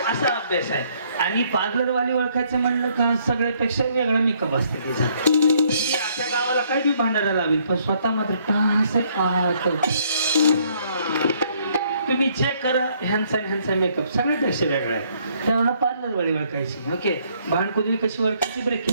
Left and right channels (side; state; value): both; inverted; correlation -0.67